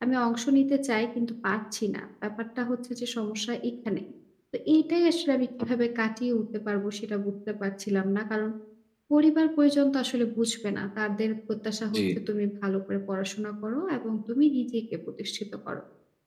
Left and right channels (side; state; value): both; identical; correlation 1.00